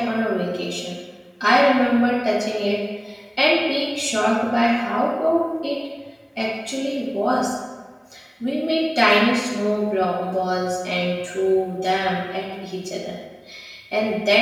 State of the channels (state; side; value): identical; both; correlation 1.00